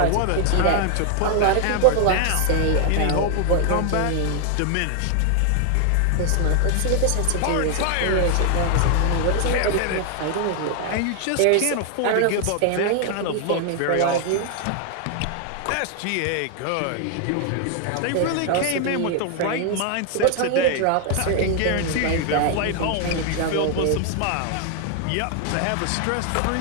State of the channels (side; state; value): both; different; correlation 0.00